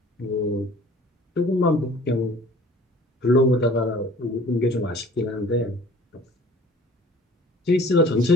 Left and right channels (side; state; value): both; normal; correlation 0.49